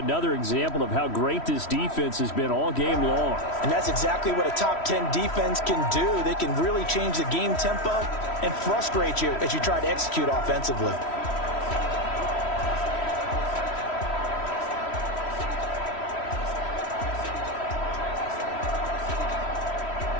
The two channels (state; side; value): late; right; 3.1 ms